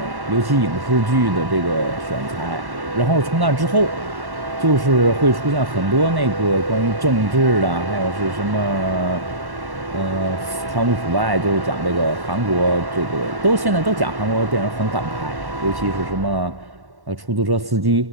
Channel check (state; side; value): late; left; 1.1 ms